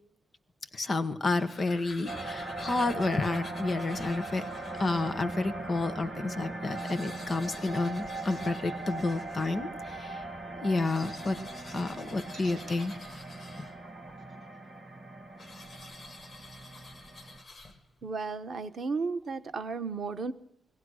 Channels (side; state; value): both; normal; correlation 0.87